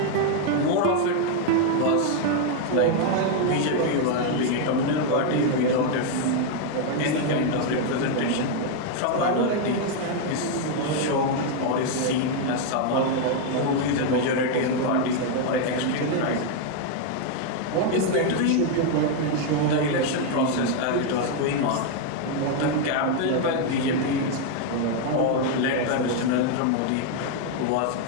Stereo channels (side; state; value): both; different; correlation 0.00